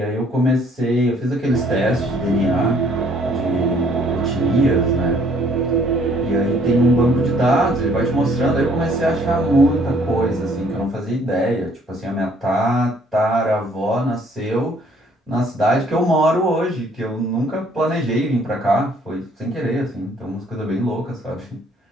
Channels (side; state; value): both; normal; correlation 0.61